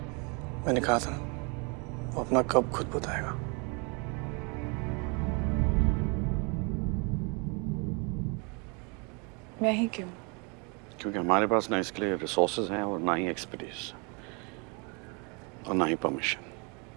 मैंने कहा था वो अपना कब खुद बताएगा। मैं ही क्यों? क्योंकि हमारे पास ना इसके लिए रिसोर्सेज हैं और ना ही एक्सपर्टीज और ना ही परमिशन।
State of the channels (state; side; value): quieter; left; 32.6 dB